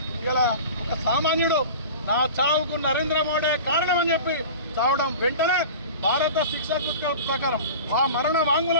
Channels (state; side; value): inverted; both; correlation -0.36